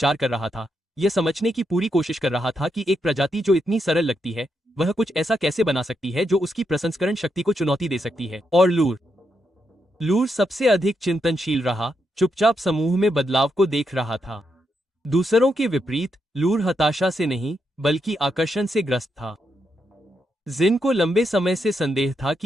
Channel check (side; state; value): both; normal; correlation 0.82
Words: कर रहा था। यह समझने की पूरी कोशिश कर रहा था कि एक प्रजाति जो इतनी सरल लगती है, वह कुछ ऐसा कैसे बना सकती है जो उसकी प्रसंस्करण शक्ति को चुनौती दे सकती है। और लूर सबसे अधिक चिंतनशील रहा, चुपचाप समूह में बदलाव को देख रहा था। दूसरों के विपरीत लूर हताशा से नहीं, बल्कि आकर्षण से ग्रस्त था। जिन को लंबे समय से संदेह था